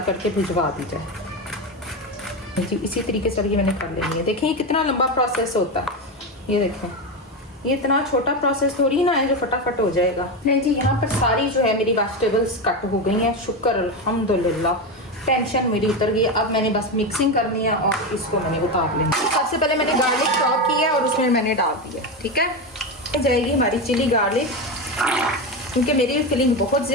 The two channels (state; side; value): normal; both; correlation 0.15